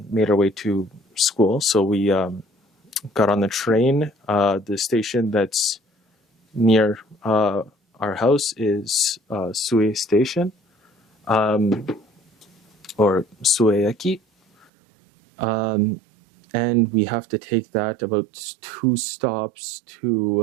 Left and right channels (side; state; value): left; drops out; at 14.7 s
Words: made our way to school. So we got on the train. The station that's near our house is Sue Station, or Sueeki. And we have to take that about 2 stops to